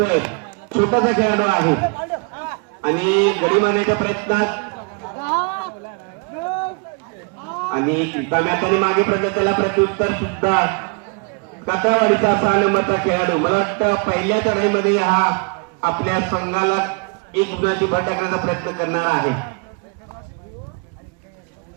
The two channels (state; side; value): quieter; left; 33.0 dB